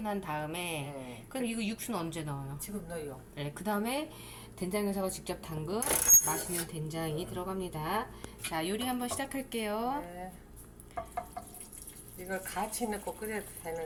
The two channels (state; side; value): identical; both; correlation 1.00